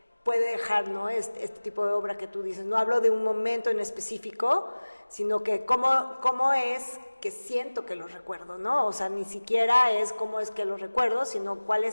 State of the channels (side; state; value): both; inverted; correlation -1.00